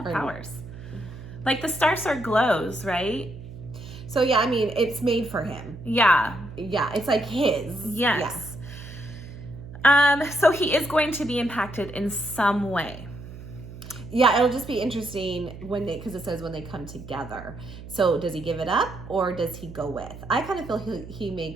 powers. Like the Star Sword glows, right? So yeah, I mean, it's made for him. Yeah. Yeah, it's like his. Yes. So he is going to be impacted in some way. Yeah, it'll just be interesting because it says when they come together. So does he give it up or does he go with? I kind of feel he may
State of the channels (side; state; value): right; noise; hum, 14 dB below the sound